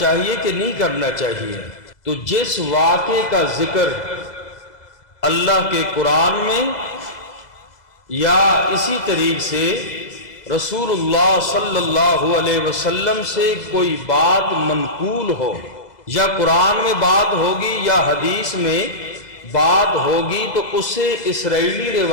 کہ نہیں کرنا چاہیے؟ تو جس واقعے کا ذکر اللہ کے قرآن میں یا اسی طریق سے رسول اللہ صلی اللہ علیہ وسلم سے کوئی بات منقول ہو، یا قرآن میں بات ہوگی یا حدیث میں بات ہوگی، تو اسے اسرائیلی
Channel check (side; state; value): right; late; 2.0 ms